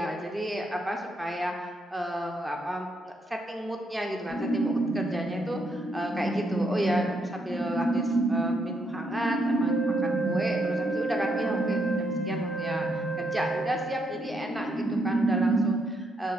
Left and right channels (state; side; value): normal; both; correlation 0.77